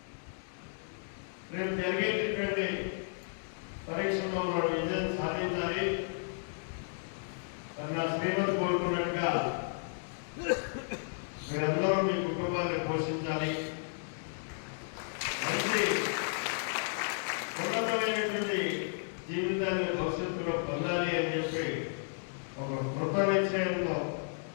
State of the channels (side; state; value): right; silent; digital silence